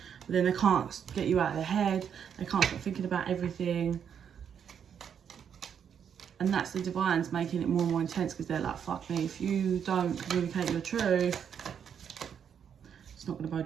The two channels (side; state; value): left; quieter; 7.9 dB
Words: But then they can't get you out of their head. They can't stop thinking about everything. And that's the divines making it more and more intense, because they're like, fuck me, if you don't communicate your truth, it's not going to